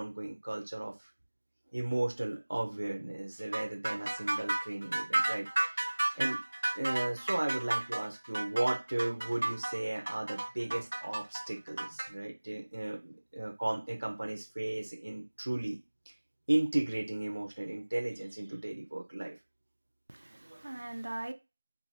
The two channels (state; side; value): inverted; both; correlation -1.00